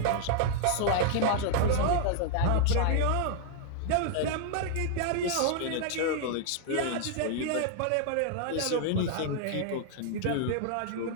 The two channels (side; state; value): both; different; correlation 0.00